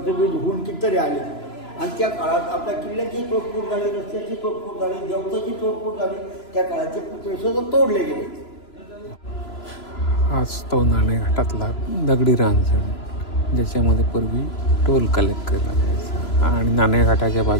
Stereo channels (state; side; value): late; right; 3.0 ms